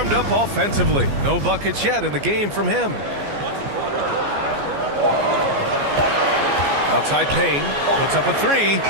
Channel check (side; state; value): left; late; 14 ms